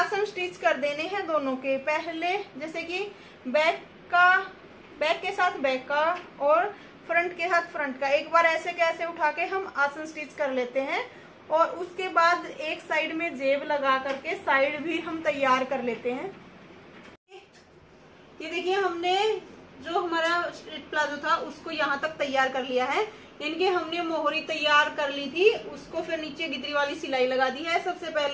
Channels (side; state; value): both; identical; correlation 1.00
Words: स्टिच कर देने हैं दोनों के। पहले जैसे कि बैक के साथ बैक का और फ्रंट के साथ फ्रंट का एक बार ऐसे कैसे उठा के हम आसन स्टिच कर लेते हैं, और उसके बाद एक साइड में जेब लगा करके साइड भी हम तैयार कर लेते हैं। ये देखिए हमने जो हमारा स्ट्रेट प्लाजो था उसको यहाँ तक तैयार कर लिया है। इनके हमने मोहरी तैयार कर ली थी, उसको फिर नीचे गिदरी वाली सिलाई लगा दी है। सबसे